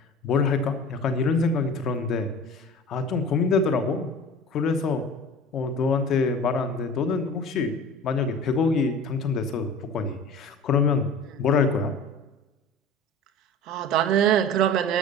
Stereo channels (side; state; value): both; normal; correlation 0.38